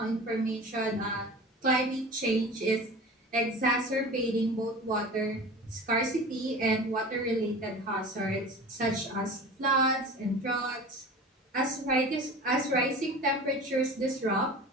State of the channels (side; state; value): both; normal; correlation 0.37